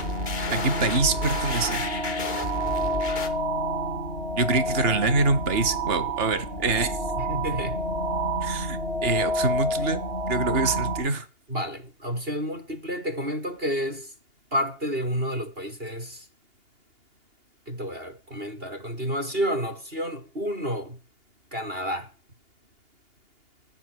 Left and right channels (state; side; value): late; left; 2.8 ms